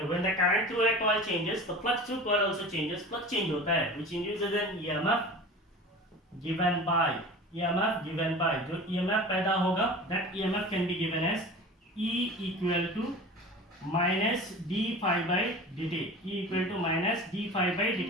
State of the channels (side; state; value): both; normal; correlation 0.37